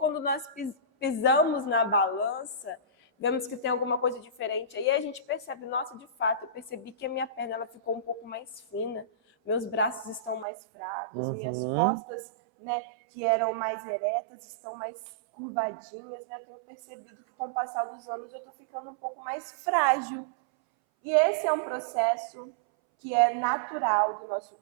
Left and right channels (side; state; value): left; drops out; at 10.5 s